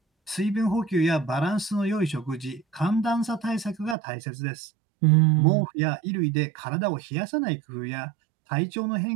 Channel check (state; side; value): drops out; left; at 4.0 s